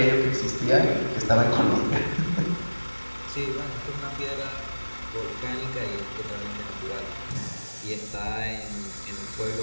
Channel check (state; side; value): inverted; both; correlation -1.00